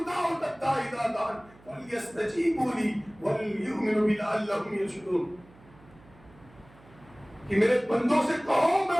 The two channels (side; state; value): right; noise; hum, 26 dB below the sound